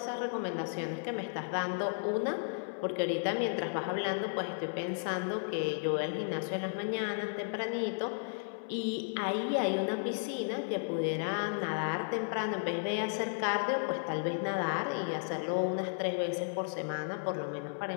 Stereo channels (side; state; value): right; silent; 55 dB below the other